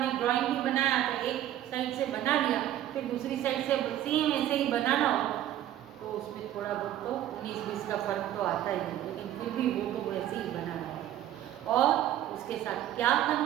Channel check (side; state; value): left; quieter; 12.4 dB